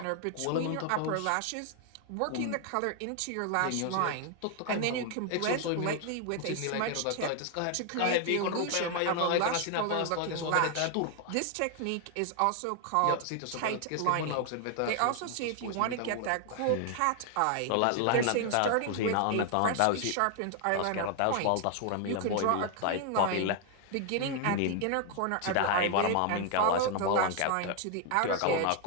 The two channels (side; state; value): both; different; correlation 0.00